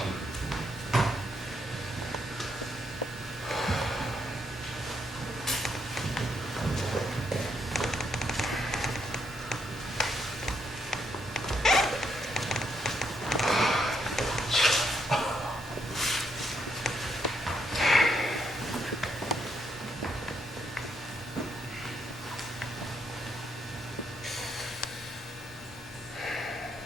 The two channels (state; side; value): normal; both; correlation 0.76